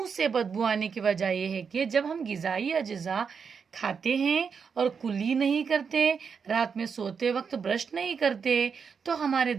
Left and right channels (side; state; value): left; quieter; 6.1 dB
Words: से बदबू आने की वजह यह है कि जब हम ग़िज़ाई अज्जा खाते हैं और कुली नहीं करते, रात में सोते वक्त ब्रश नहीं करते, तो हमारे